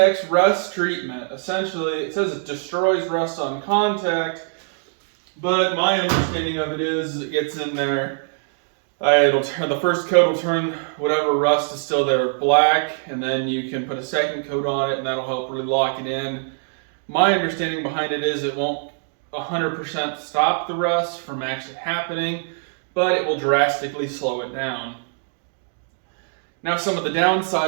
rust treatment. Essentially, it says it destroys rust on contact. But my understanding of it is it gets in there, the first coat will turn whatever rust is still there black, and then you can put a second coat on it and that'll help really lock it in. My understanding behind it is it won't 100% stop the rust from actually happening, but it will drastically slow it down. Now some of the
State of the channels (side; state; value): left; silent; digital silence